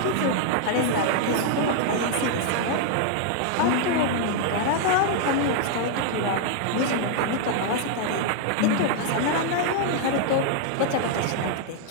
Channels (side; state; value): both; different; correlation 0.00